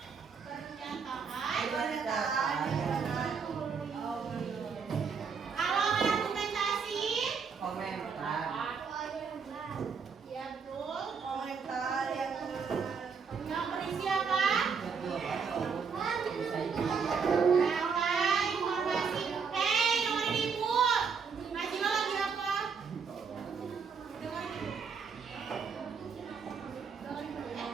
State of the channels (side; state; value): left; quieter; 5.8 dB